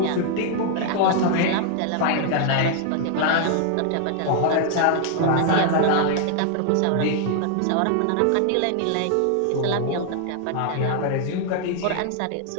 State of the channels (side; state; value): both; different; correlation 0.00